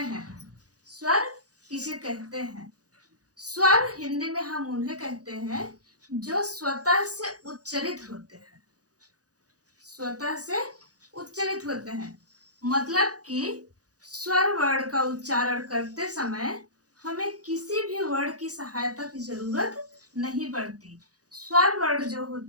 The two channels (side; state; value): left; late; 0.67 ms